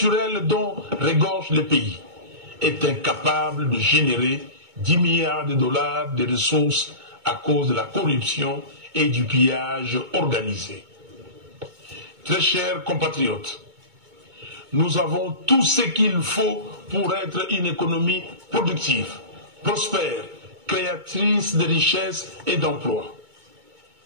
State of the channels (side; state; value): left; late; 2.2 ms